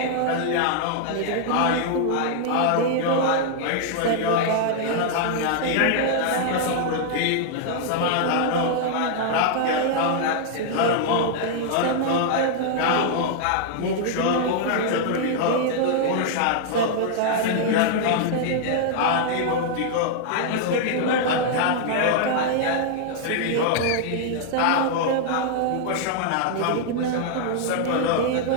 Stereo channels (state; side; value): different; both; correlation 0.00